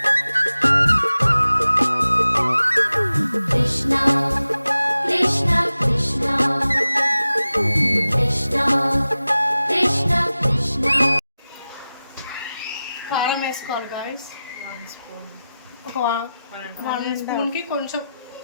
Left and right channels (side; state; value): both; inverted; correlation -0.94